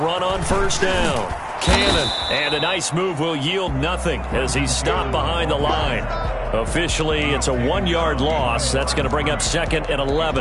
on first down. Cannon, and a nice move will yield nothing as he's stopped behind the line. Officially, it's a 1-yard loss. That's going to bring up 2nd and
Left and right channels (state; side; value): identical; both; correlation 1.00